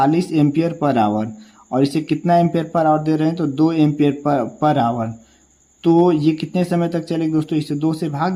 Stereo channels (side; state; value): both; identical; correlation 1.00